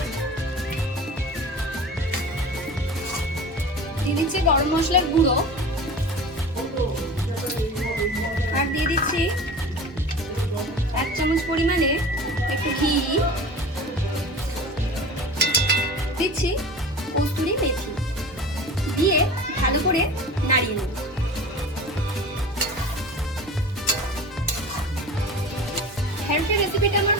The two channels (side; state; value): both; normal; correlation 0.36